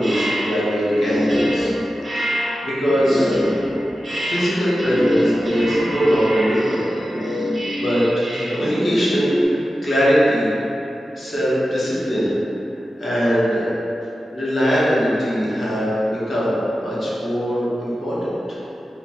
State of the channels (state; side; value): normal; both; correlation 0.92